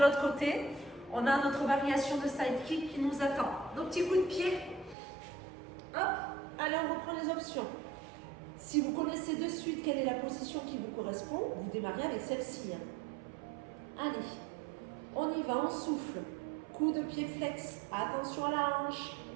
côté. On a notre variation de side kick qui nous attend. Nos petits coups de pied. Hop. Allez, on reprend les options. Si vous connaissez de suite quelle est la position qui vous correspond, vous démarrez avec celle-ci. Allez, on y va, on souffle. Coup de pied flex. Attention à la hanche.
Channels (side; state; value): left; drops out; at 5.0 s